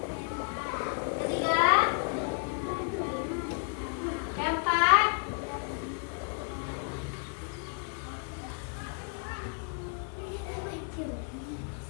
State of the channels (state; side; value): quieter; right; 38.2 dB